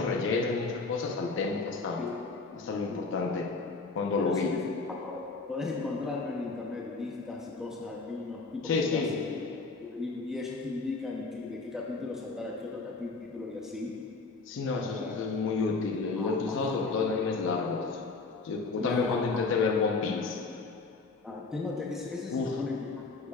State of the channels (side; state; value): right; quieter; 3.9 dB